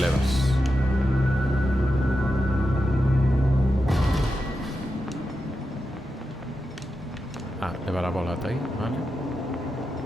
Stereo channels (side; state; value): both; normal; correlation 0.89